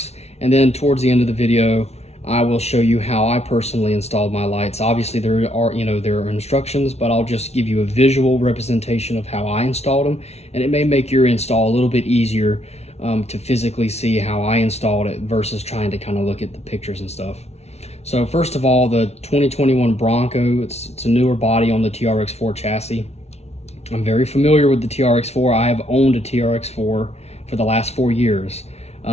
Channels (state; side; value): late; right; 0.31 ms